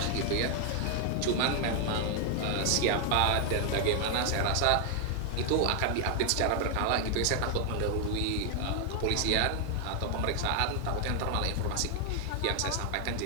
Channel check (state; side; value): different; both; correlation 0.00